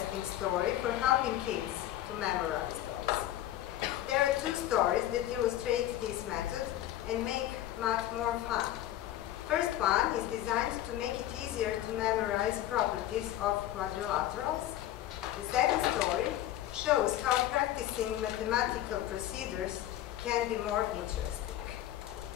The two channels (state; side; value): quieter; right; 13.3 dB